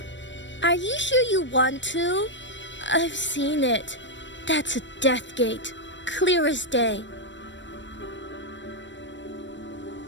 are you sure you want to? I've seen it. That's a death gate, clear as day.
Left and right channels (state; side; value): late; right; 0.53 ms